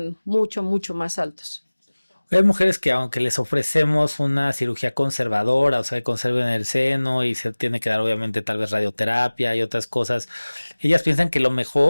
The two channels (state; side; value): inverted; both; correlation -1.00